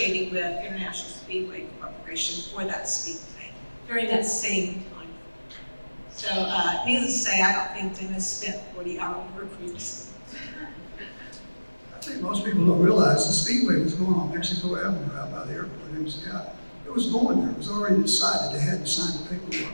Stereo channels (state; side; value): inverted; both; correlation -1.00